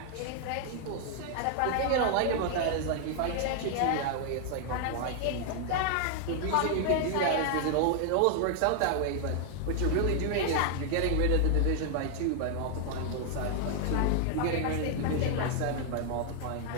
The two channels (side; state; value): both; different; correlation 0.00